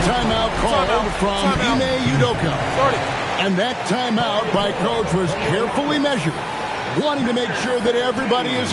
timeout called from Ime Udoka. And that timeout by coach was carefully measured, wanting to make sure that everybody is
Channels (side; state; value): both; identical; correlation 1.00